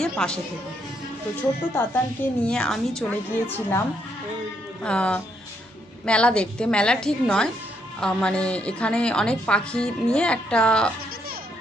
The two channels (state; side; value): normal; both; correlation 0.74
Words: পাশে থেকো। তো ছোট্ট তাতানকে নিয়ে আমি চলে গিয়েছিলাম মেলা দেখতে। মেলা ঠিক নয়, মানে এখানে অনেক পাখি নিয়ে একটা,